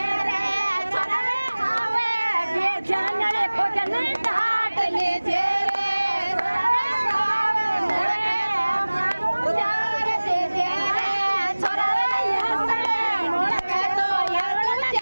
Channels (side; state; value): both; inverted; correlation -1.00